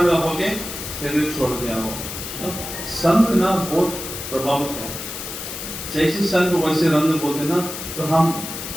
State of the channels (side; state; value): left; noise; hiss, 8 dB below the sound